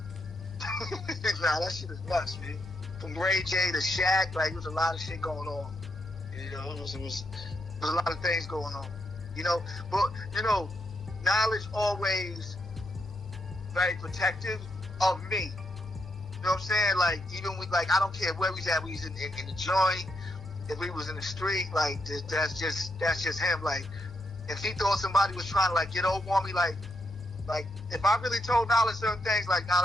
Nah, that shit is nuts, man. From Ray J to Shaq, like, there was a lot of shit going on. You know, it was a lot of things going on. You know, but you know, Knowledge always very protective of me. You know what I'm saying? Like, even with, like, I don't care where we at. We was in the joint. If we was in the street, like, that's just him. Like, if he thought somebody was trying to like get over on me, like if I really told Knowledge certain things, like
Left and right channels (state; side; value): normal; both; correlation 0.80